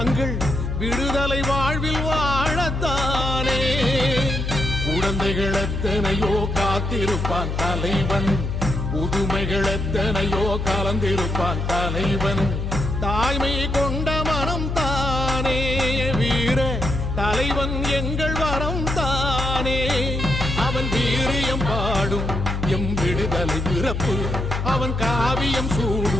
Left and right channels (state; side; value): noise; left; hum, 3 dB below the sound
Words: விடுதலை வாழ்வில் வாழத்தானே. குழந்தைகள் எத்தனையோ காத்திருப்பான் தலைவன், புதுமைகள் எத்தனையோ கலந்திருப்பான் தலைவன். தாய்மை கொண்ட மனம் தானே வீர தலைவன் எங்கள் வரம் தானே. அவன் வீரியம் பாடும் எம் விடுதலை பிறப்பு, அவன் காவியம்